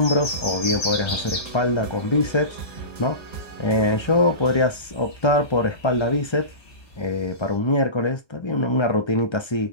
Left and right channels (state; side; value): late; right; 1.3 ms